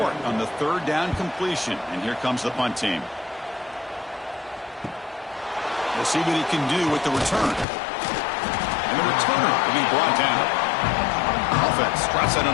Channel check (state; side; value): drops out; right; at 7.7 s